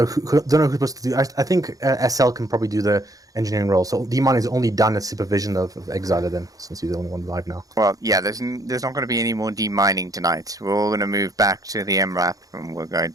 who's supposed to do. I think SL can probably do the engineering role. So D-Mon is only done at supervision of Exiler then, since he's the only one alive now. Well, yeah, there's not going to be any more demining tonight. We're all going to move back to the MRAP and we're going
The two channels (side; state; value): left; late; 0.17 ms